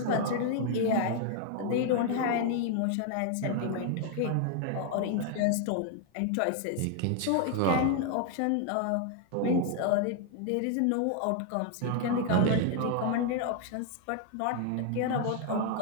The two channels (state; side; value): different; both; correlation 0.00